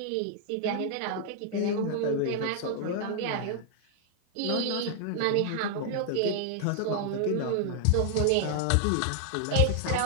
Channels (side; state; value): both; different; correlation 0.00